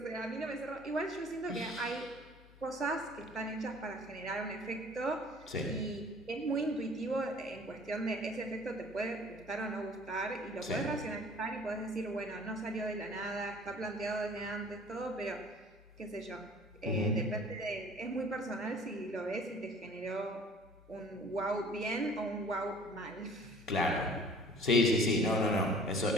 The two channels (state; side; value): normal; both; correlation 0.50